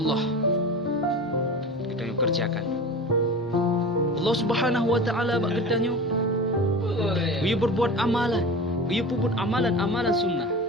kita yang kerjakan. Allah Subhanahu wa taala bak kita nyo dia berbuat amalan, dia pun amalan-amalan sunnah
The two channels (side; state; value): both; normal; correlation 0.33